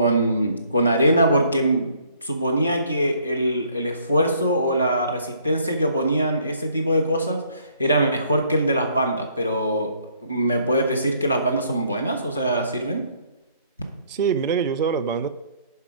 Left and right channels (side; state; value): both; inverted; correlation -0.64